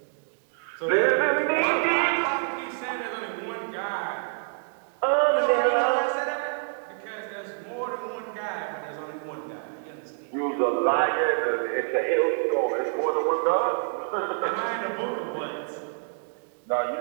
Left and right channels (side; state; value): left; silent; 60 dB below the other